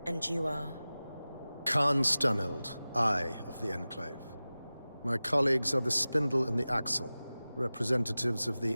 And you are? Khan Stunild, Eye of the Enclave. My colleagues are the Spindle and the Axle, representatives of the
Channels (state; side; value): inverted; both; correlation -0.97